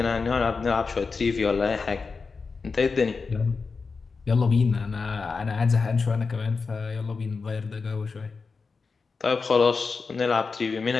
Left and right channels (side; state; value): right; quieter; 4.6 dB